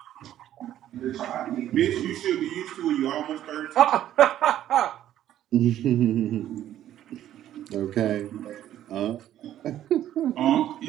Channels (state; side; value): quieter; left; 12.0 dB